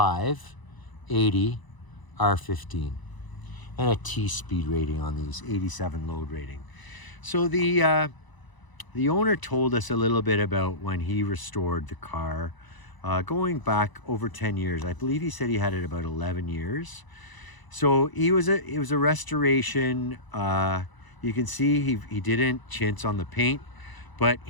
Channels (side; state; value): right; late; 1.0 ms